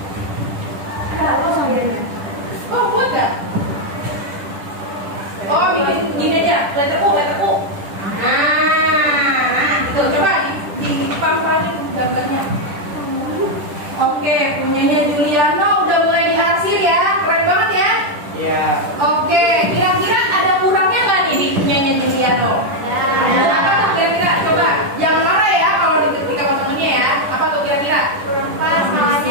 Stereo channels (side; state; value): left; late; 10 ms